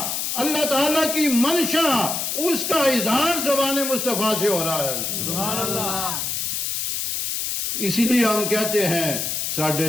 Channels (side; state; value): left; noise; hiss, 1 dB below the sound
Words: اللہ تعالیٰ کی منشا، اس کا اظہار زبان مصطفیٰ سے ہو رہا ہے۔ سبحان اللہ۔ اسی لیے ہم کہتے ہیں ساڈے